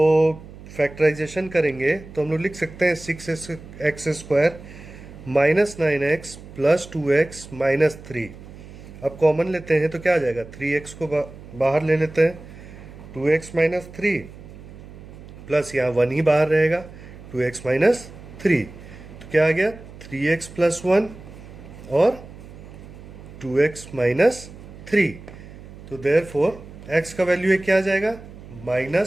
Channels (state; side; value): noise; right; hum, 17 dB below the sound